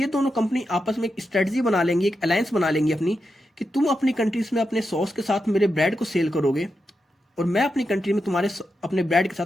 दोनों कंपनी आपस में एक स्ट्रेटजी बना लेंगी, एक अलायंस बना लेंगी अपनी, कि तुम अपनी कंट्रीज में अपने सॉस के साथ मेरे ब्रेड को सेल करोगे, और मैं अपनी कंट्री में तुम्हारे अपने ब्रांड के साथ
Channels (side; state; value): both; normal; correlation 0.87